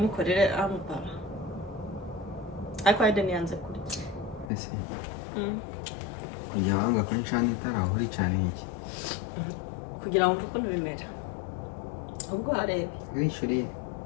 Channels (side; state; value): right; drops out; at 4.5 s